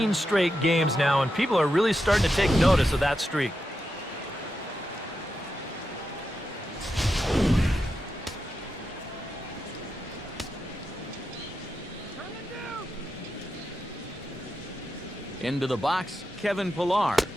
straight games now, and people are really starting to take notice of that streak. Into the box, Kevin Pillar.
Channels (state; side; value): normal; both; correlation 0.87